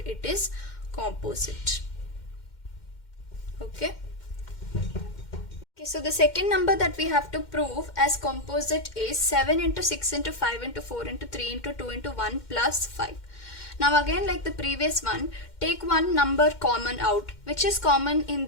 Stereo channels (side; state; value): right; late; 2.1 ms